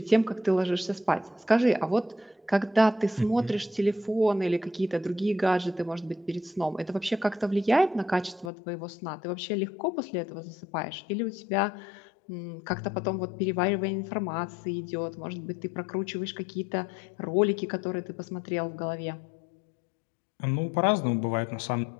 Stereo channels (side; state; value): right; drops out; at 8.5 s